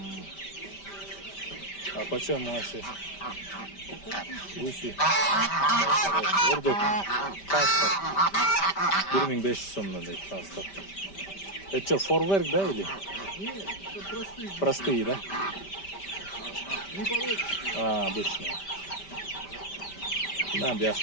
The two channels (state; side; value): late; right; 5.1 ms